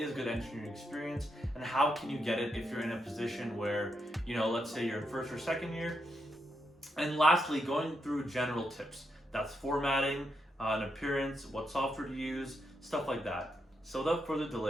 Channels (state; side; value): normal; both; correlation 0.81